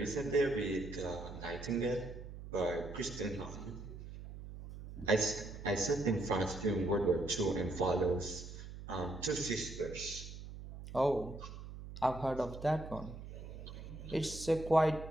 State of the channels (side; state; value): right; noise; hum, 11 dB below the sound